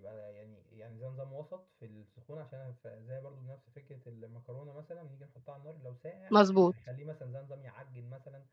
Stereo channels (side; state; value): both; identical; correlation 1.00